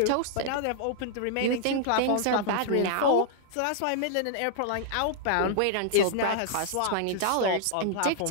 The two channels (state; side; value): different; both; correlation -0.01